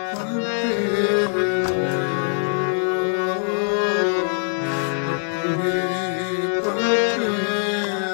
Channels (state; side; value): silent; right; 58 dB below the other